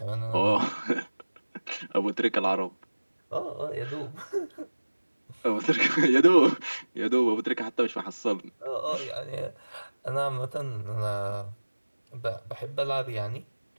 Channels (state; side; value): inverted; both; correlation -1.00